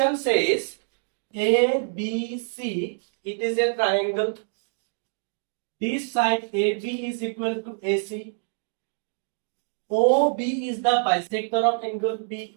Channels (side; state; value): left; silent; digital silence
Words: says ABC, it is a triangle. This side AB is equal to AC. OB is the bisector of angle B.